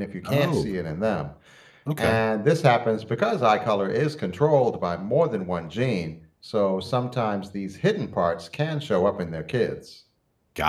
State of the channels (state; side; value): identical; both; correlation 1.00